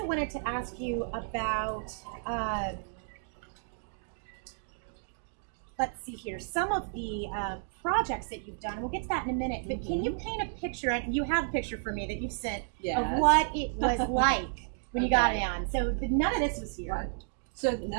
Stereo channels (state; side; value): silent; left; digital silence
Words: wanted to ask you about let's see here, some of the projects that you've done. We'll get to that in a minute, but can you paint a picture, and you have a picture for me that you've sent, of what it was like when you got it on. So none of this was here. Right. So